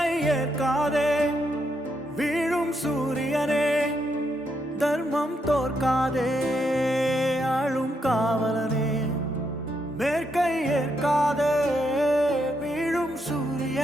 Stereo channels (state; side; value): normal; both; correlation 0.79